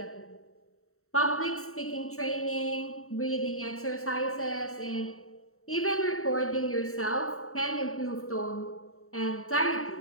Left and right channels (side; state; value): right; late; 0.63 ms